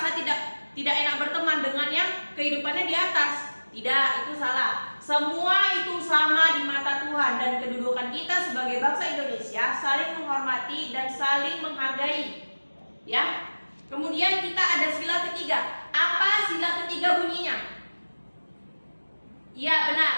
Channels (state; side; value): inverted; both; correlation -1.00